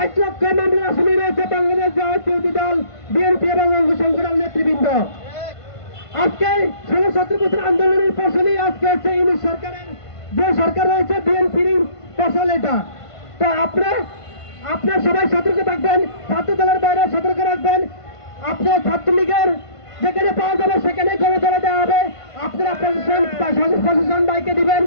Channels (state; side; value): late; right; 1.5 ms